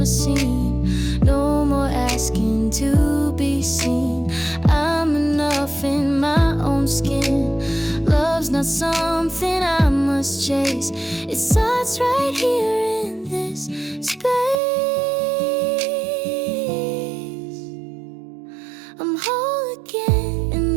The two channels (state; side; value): drops out; left; at 14.6 s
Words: seen. No more asking to be seen. I'm enough in my own skin. Love's not something I must chase. It starts right here in this space. I'm whole again,